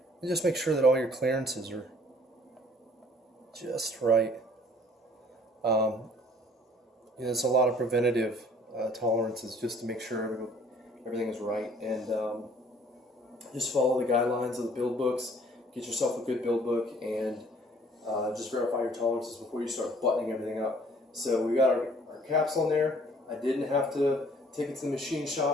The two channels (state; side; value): normal; both; correlation 0.56